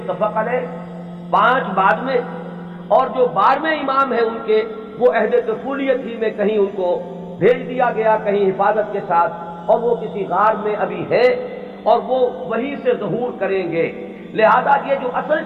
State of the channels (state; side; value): identical; both; correlation 1.00